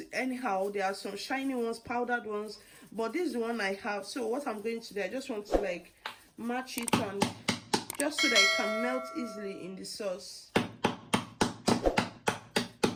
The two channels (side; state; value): both; identical; correlation 1.00